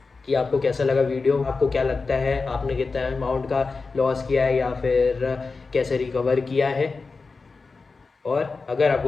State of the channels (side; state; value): right; quieter; 4.2 dB